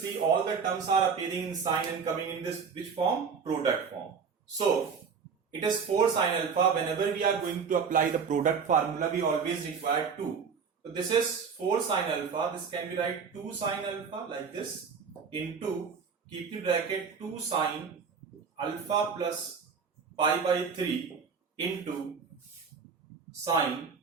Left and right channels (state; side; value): quieter; left; 5.9 dB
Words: all the terms are appearing in sin and coming in this which form? Product form. So it is 4 sine alpha. Whenever we are going to apply the product formula, we always require 2. So this is 4 sine alpha. This can be write 2 sine alpha like this into, keep in bracket, 2 sine alpha plus pi by 3 into sine